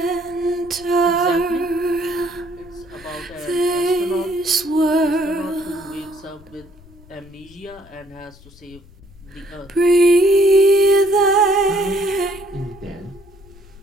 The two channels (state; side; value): noise; left; rumble, 24 dB below the sound